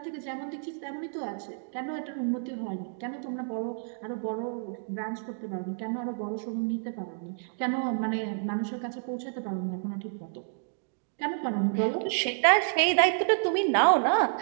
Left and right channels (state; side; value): silent; left; digital silence